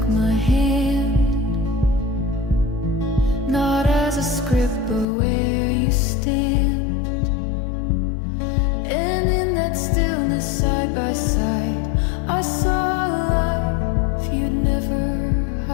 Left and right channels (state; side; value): drops out; right; at 5.1 s